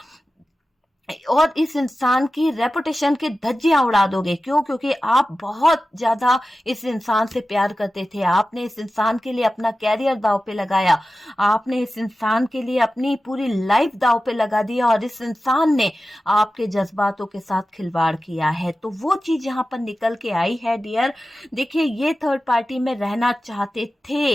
और इस इंसान की रेपुटेशन की धज्जियां उड़ा दोगे। क्यों? क्योंकि आप बहुत ज्यादा इस इंसान से प्यार करते थे, आपने इस इंसान के लिए अपना कैरियर दांव पे लगाया, आपने इस इंसान के लिए अपनी पूरी लाइफ दांव पे लगा दिया और इस इंसान ने आपके जज्बातों के साथ खिलवाड़ किया है। तो वो चीज यहाँ पर निकल के आई है डियर। देखिए, ये थर्ड पार्टी में रहना चाहते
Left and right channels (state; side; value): normal; both; correlation 0.94